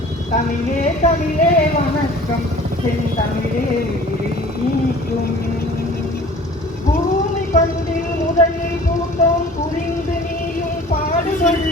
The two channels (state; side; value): normal; both; correlation 0.46